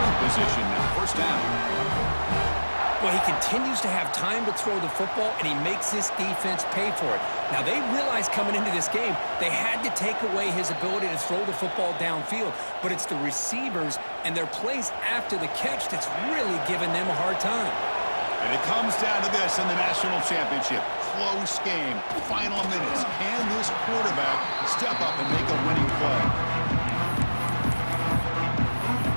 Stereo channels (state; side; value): inverted; both; correlation -1.00